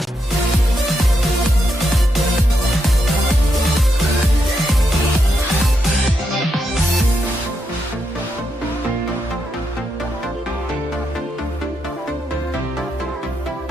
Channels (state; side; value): normal; both; correlation 0.82